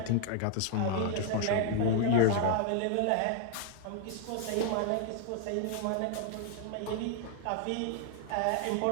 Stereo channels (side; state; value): both; different; correlation 0.00